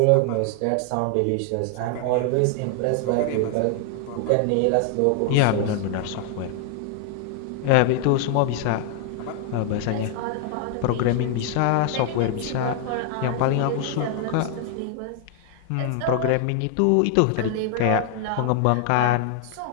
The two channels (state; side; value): different; both; correlation 0.00